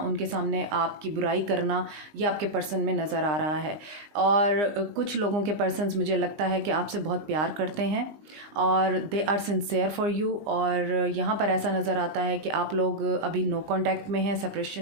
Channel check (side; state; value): left; late; 20 ms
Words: सामने आपकी बुराई करना, ये आपके पर्सन में नज़र आ रहा है। और कुछ लोगों के पर्सन्स मुझे लगता है कि आपसे बहुत प्यार करते हैं और they are sincere for you. और यहाँ पर ऐसा नज़र आता है कि आप लोग अभी नो कांटेक्ट में हैं,